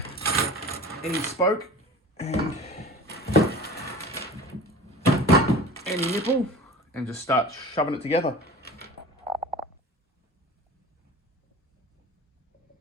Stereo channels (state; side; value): normal; both; correlation 0.38